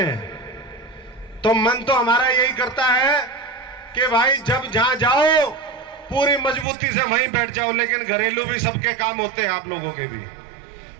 हैं। तो मन तो हमारा यही करता है कि भाई जब जहां जाओ पूरी मजबूती से वहीं बैठ जाओ, लेकिन घरेलू भी सबके काम होते हैं, आप लोगों के भी।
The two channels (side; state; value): left; drops out; at 6.7 s